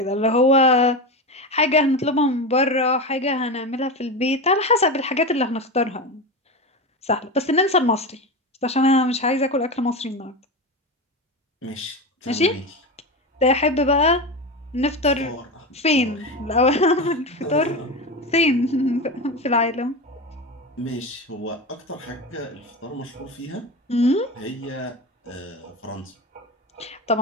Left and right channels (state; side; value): normal; both; correlation 0.21